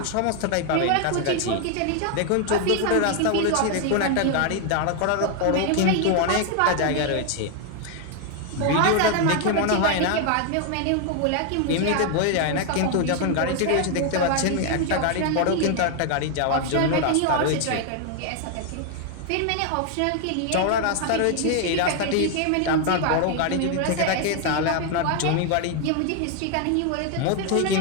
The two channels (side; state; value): both; different; correlation 0.00